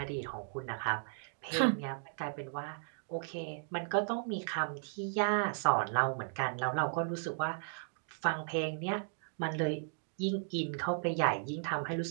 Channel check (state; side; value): silent; left; digital silence